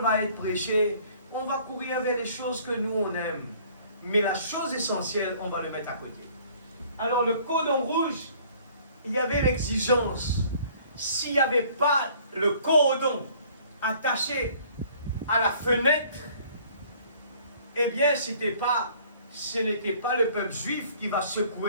va être prêchée, on va courir vers les choses que nous on aime. Mais la chose essentielle, on va le mettre à côté. Alors le cordon rouge, il y avait l'exigence. S'il n'y avait pas le cordon attaché à la fenêtre, eh bien, ce n'était pas le peuple juif qui va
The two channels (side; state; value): both; inverted; correlation -0.55